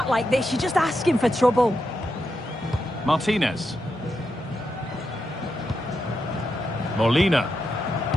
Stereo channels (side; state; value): both; normal; correlation 0.85